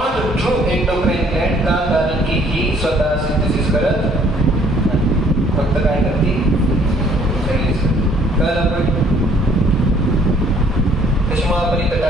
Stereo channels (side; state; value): both; normal; correlation 0.60